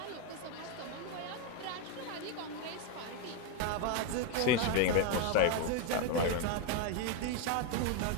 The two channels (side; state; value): both; different; correlation 0.01